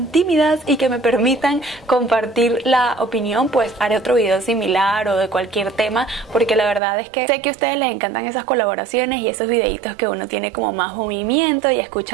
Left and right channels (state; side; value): drops out; left; at 6.8 s